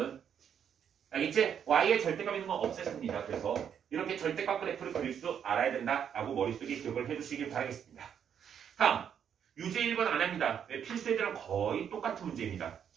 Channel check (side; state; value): left; quieter; 8.3 dB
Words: 알겠지? y의 절대값 있는 건 없앴습니다. 그래서 이렇게 절대값 그래프를 그릴 줄 알아야 된다라고 머릿속에 기억을 해주시길 바라겠습니다. 다음 유제 1번 안 합니다. 필수애들랑 거의 똑같은 문제입니다.